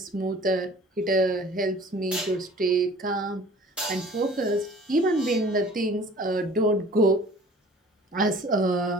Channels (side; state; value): both; normal; correlation 0.48